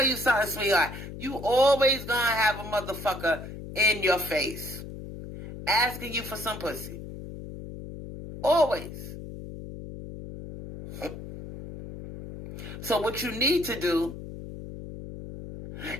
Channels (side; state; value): left; noise; hum, 11 dB below the sound